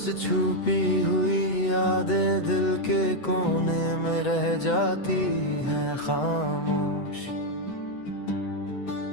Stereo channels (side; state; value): right; late; 8.0 ms